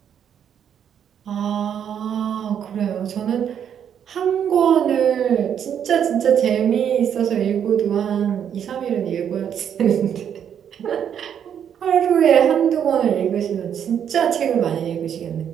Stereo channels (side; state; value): left; quieter; 8.7 dB